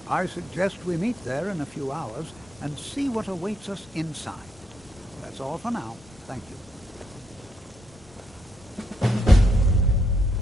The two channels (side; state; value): both; normal; correlation 0.77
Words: I suggest we meet there in a few hours and see what awaits us inside. That's all for now. Thank you.